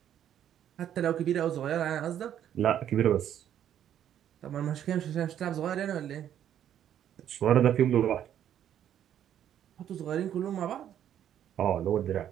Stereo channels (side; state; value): left; quieter; 10.3 dB